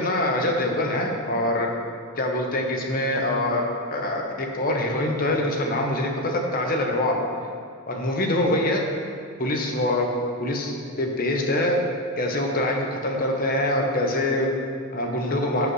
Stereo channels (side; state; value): both; normal; correlation 0.09